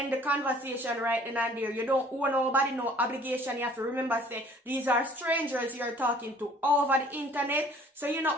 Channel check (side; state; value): both; normal; correlation 0.54